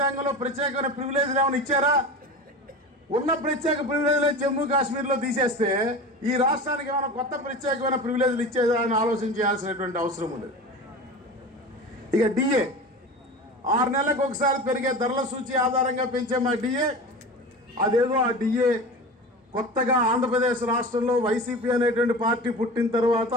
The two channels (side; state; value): both; normal; correlation 0.31